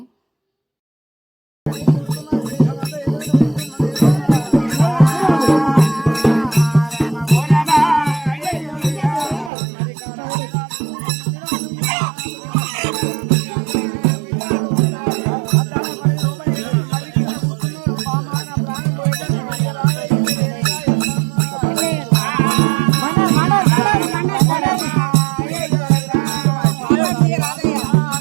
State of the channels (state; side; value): drops out; left; at 9.5 s